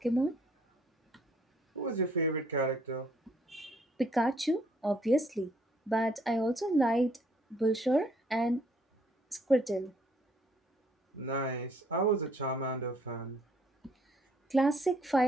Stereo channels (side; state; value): both; normal; correlation 0.64